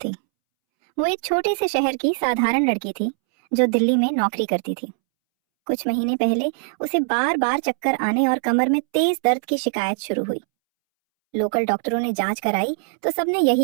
वो एक छोटे से शहर की साधारण लड़की थी जो दिल्ली में नौकरी करती थी। कुछ महीने पहले उसे बार बार चक्कर आने और कमर में तेज दर्द की शिकायत शुरू हुई। लोकल डॉक्टरों ने जांच कराई तो सबने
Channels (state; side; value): silent; left; 64 dB below the other